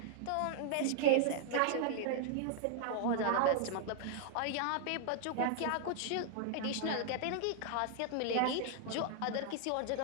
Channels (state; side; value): different; both; correlation -0.01